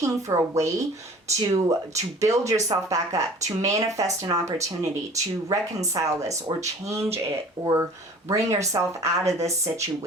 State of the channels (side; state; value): both; normal; correlation 0.46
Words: for a way to build yourself back up, to manifest an opportunity, to reconcile this or change it or bring yourself out of this